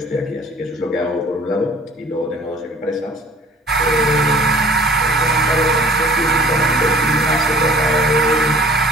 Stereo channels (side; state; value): both; normal; correlation 0.49